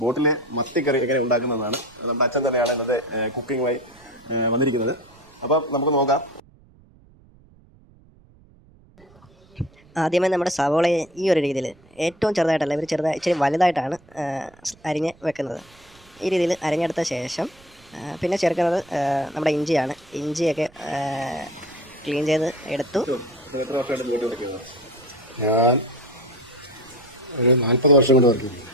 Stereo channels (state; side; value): noise; right; rumble, 27 dB below the sound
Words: ബോട്ടിലെ മത്തിക്കറി എങ്ങനെ ഉണ്ടാക്കുന്നതാണ്. നമ്മുടെ അച്ഛൻ തന്നെയാണ് ഇന്നത്തെ കുക്കിങ്ങുമായി വന്നിരിക്കുന്നത്. അപ്പം നമുക്ക് നോക്കാം. ആദ്യമേ നമ്മുടെ സവോളയെ ഈ ഒരു രീതിയിൽ ഏറ്റവും ചെറുതായിട്ടല്ല, ഇവർ ഇച്ചിരി വലുതായിട്ടാണ് അരിഞ്ഞ് വെക്കുന്നത്. ഈ രീതിയിൽ അരിഞ്ഞെടുത്ത ശേഷം പിന്നെ ചേർക്കുന്നത് നമ്മുടെ ഇഞ്ചിയാണ്. ഇഞ്ചിയൊക്കെ ക്ലീൻ ചെയ്ത് എടുത്തു. എത്ര വർഷമായിട്ട് ബോട്ട് വയ്ക്കുന്നത്? ഞാൻ ഒരു 40 വർഷം കൊണ്ട് വർക്ക് ചെയ്തു.